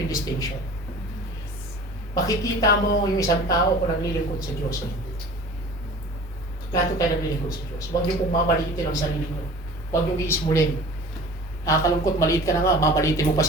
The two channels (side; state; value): both; normal; correlation 0.42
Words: yung distinction. Makikita mo yung isang tao kung naglilingkod sa Diyos o hindi. Lahat tayo naglilingkod sa Diyos. Huwag niyo pong mamalitin ang sarili niyo. Huwag niyo iismulin. Nakakalungkot, maliit ka na nga, mamalitin mo pa